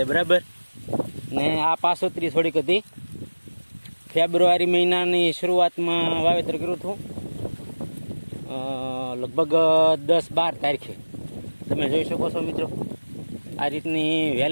બરાબર. ને આ પાસોતરી થોડીક હતી. ફેબ્રુઆરી મહિનાની શરૂઆતમાં વાવેતર કર્યું હતું, લગભગ 10-12 તારીખે. તમે જોઈ શકો છો મિત્રો, આ રીતની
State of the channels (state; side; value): inverted; both; correlation -1.00